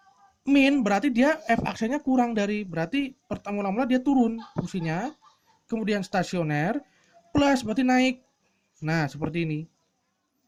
Min berarti dia F aksennya kurang dari. Berarti mula-mula dia turun fungsinya. Kemudian stasioner. Plus berarti naik. Nah seperti ini.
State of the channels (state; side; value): identical; both; correlation 1.00